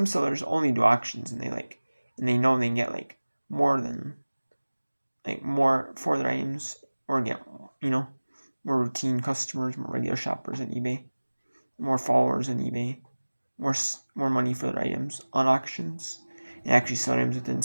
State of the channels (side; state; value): both; inverted; correlation -1.00